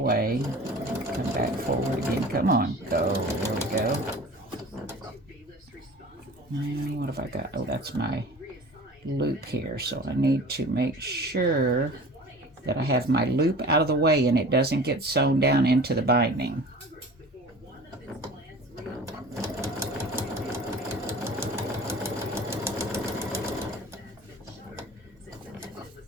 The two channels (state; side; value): normal; both; correlation 0.41